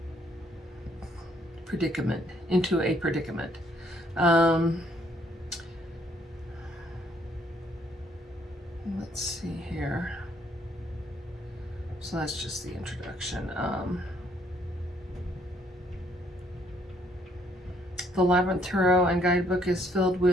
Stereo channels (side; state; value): both; normal; correlation 0.68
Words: into a predicament. Let's see here. So that's just the introduction. The Labyrinth Tarot and Guidebook is filled